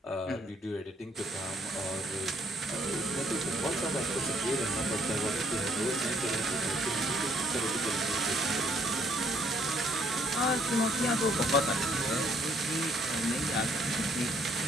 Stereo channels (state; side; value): normal; both; correlation 0.67